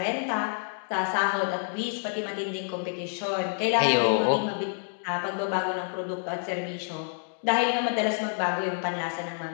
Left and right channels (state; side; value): silent; right; digital silence